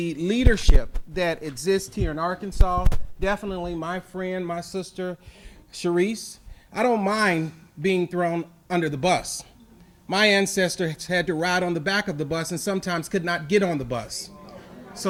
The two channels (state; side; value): identical; both; correlation 1.00